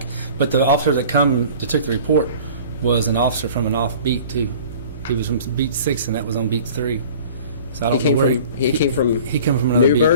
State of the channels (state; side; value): inverted; both; correlation -0.45